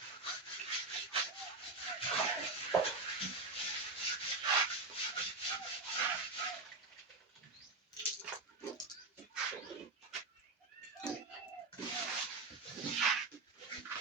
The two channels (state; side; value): quieter; left; 3.6 dB